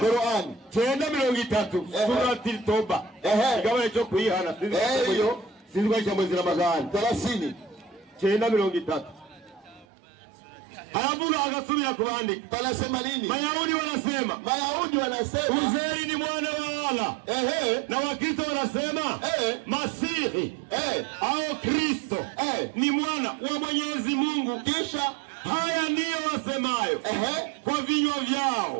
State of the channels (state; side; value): drops out; left; at 9.9 s